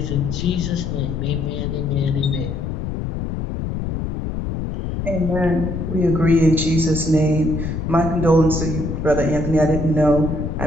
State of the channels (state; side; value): noise; left; rumble, 4 dB below the sound